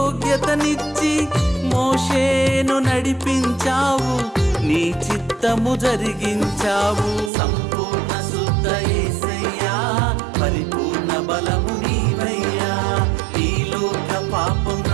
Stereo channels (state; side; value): drops out; left; at 7.3 s